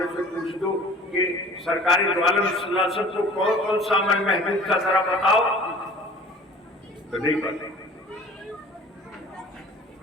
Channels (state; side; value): normal; both; correlation 0.46